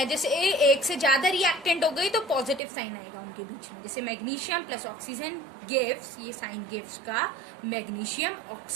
जैसे एक से ज्यादा रिएक्टेंट हो गई तो पॉजिटिव साइन आएगा उनके बीच में, जैसे मैग्नीशियम प्लस ऑक्सीजन गिव्स, ये साइन गिव्स का मैग्नीशियम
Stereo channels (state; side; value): drops out; left; at 2.6 s